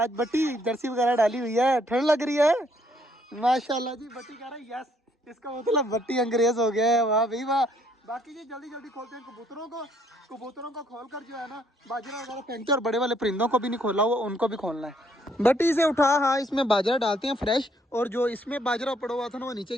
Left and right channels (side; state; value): both; normal; correlation 0.68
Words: बट्टी जर्सी वगैरह डाली हुई है, ठंड लग रही है माशाल्लाह जी। बट्टी कह रहा है यस, इसका मतलब बट्टी अंग्रेज हो गया है। वाह भाई वाह। बाकी जी जल्दी जल्दी खोलते हैं कबूतरों को खोल कर जो है ना बाजरा वगैरह फेंकते हैं। और बड़े वाले परिंदों को भी नहीं खोला हुआ, उनको भी खोलना है। बट्टी से उठा, हाँ इसमें बाजरा डालते हैं फ्रेश। और जो इसमें बाजरा पड़ा हुआ था ना वो नीचे